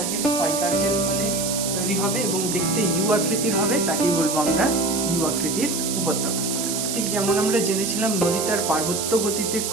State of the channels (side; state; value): right; noise; hiss, 2 dB below the sound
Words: ক্ষয়কার্যের ফলে তৈরি হবে এবং দেখতে ইউ আকৃতির হবে তাকেই বলবো আমরা ইউ আকৃতির উপত্যকা। ঠিক যেমন আমরা জেনেছিলাম নদী তার পার্বত্য গতিতে